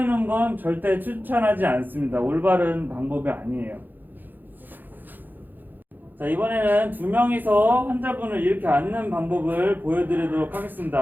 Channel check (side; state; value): left; late; 0.088 ms